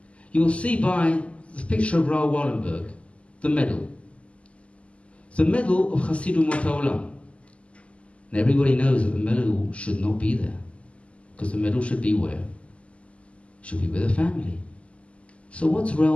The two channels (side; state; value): right; late; 0.061 ms